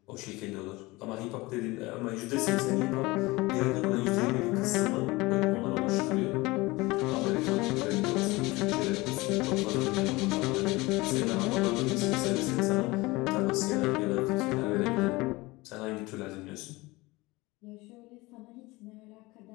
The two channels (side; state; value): right; quieter; 22.0 dB